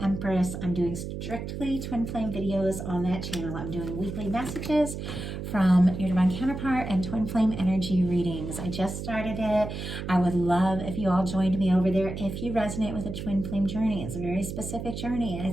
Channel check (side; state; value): right; noise; hum, 6 dB below the sound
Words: Empress. I'm doing strictly twin flame videos on that channel. I'm doing weekly messages from your divine counterpart and twin flame energy readings. I just started it. I would love if you all joined me over there if you resonate with a twin flame journey. It's a very specific journey.